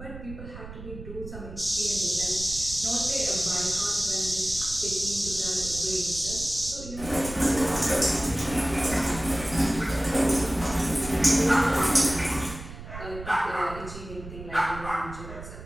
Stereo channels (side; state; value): right; noise; rumble, 12 dB below the sound